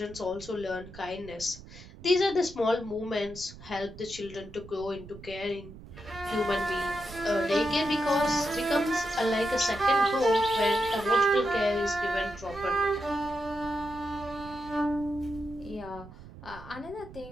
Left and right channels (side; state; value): right; noise; rumble, 17 dB below the sound